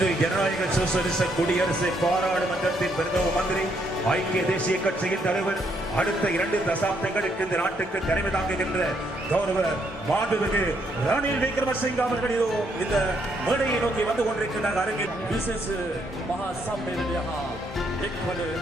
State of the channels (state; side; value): normal; both; correlation 0.73